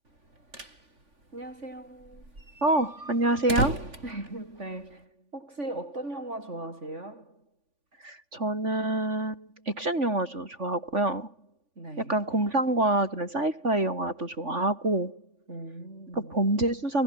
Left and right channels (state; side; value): late; left; 3.5 ms